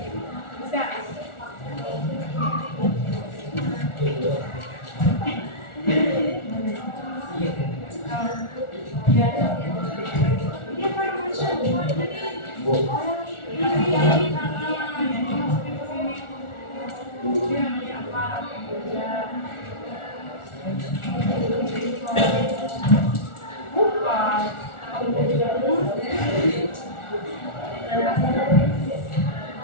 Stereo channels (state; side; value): late; right; 1.4 ms